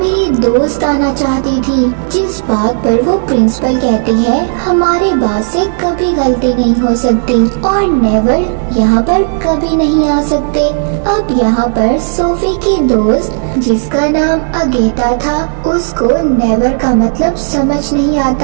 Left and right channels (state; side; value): silent; left; digital silence